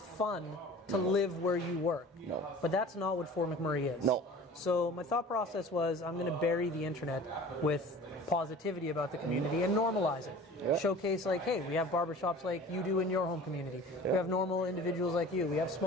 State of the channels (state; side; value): normal; both; correlation 0.42